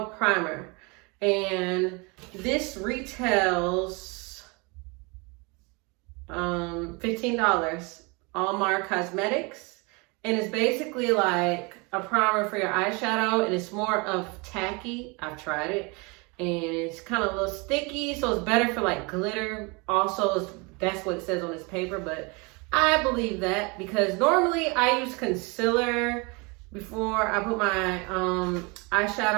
primer, and this retails $15. Int Cosmetics, and it's basically like a primer for your eyeshadow, and it's more of tacky. I've tried it, and it's kind of a little sticky, so it's better for like glitter. Also, that's what it says on this paper, but I believe that because normally I use concealer before I put my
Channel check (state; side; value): quieter; left; 28.9 dB